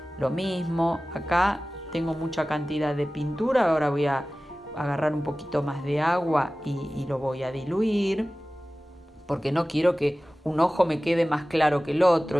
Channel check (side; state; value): both; normal; correlation 0.97